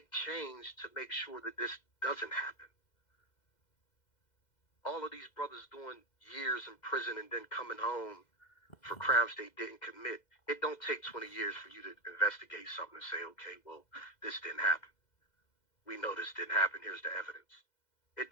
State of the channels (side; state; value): right; late; 2.0 ms